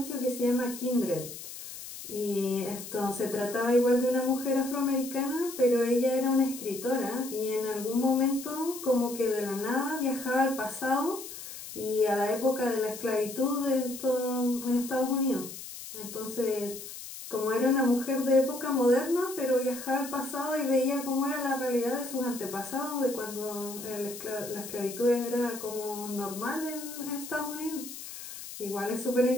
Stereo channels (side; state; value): left; noise; hiss, 11 dB below the sound